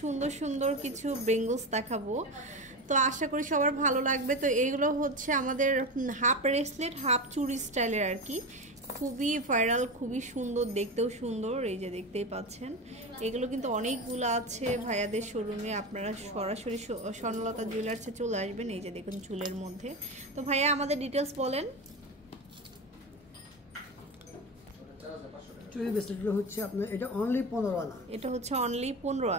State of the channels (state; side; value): normal; both; correlation 0.21